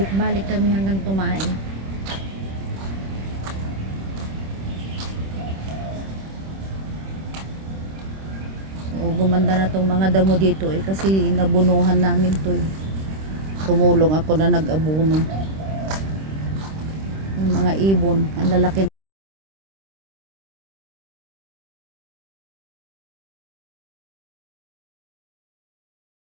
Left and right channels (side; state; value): left; late; 26 ms